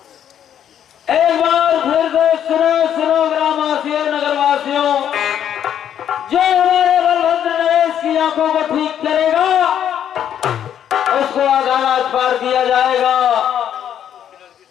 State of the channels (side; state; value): right; quieter; 9.7 dB